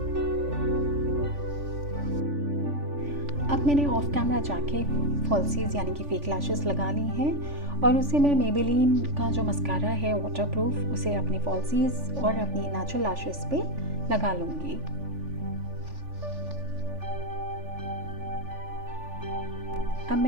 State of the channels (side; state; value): left; late; 3.5 ms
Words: अब मैंने ऑफ कैमरा जाके फॉल्सीज यानी कि फेक लैशेस लगा ली हैं और उसे मैं मेबेलिन का जो मस्कारा है वाटरप्रूफ उसे अपनी फॉल्सीज और अपनी नेचुरल लैशेस पे लगा लूँगी। अब